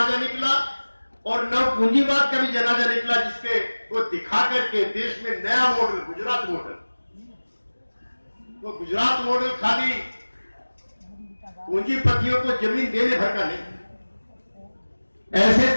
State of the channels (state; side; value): inverted; both; correlation -1.00